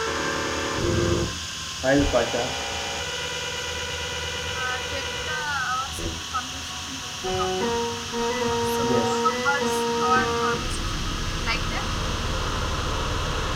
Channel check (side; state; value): both; identical; correlation 1.00